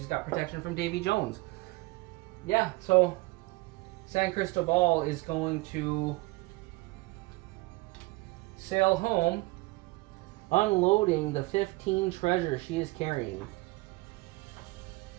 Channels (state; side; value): quieter; left; 22.6 dB